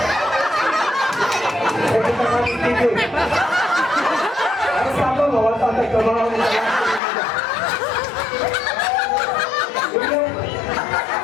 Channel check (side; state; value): right; drops out; at 7.0 s